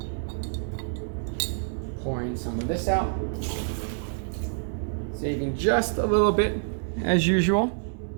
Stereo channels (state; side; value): silent; left; digital silence